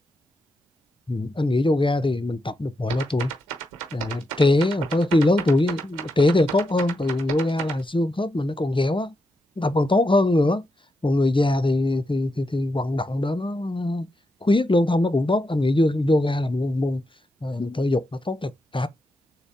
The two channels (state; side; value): normal; both; correlation 0.84